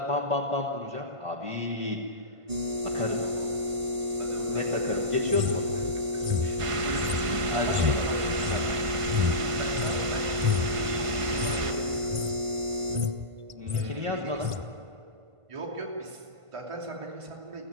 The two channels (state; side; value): late; left; 1.5 ms